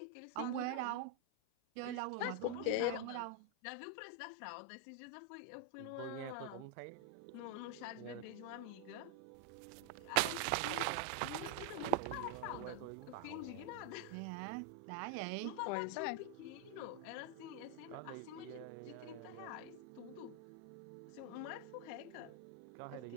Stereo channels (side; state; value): both; different; correlation 0.01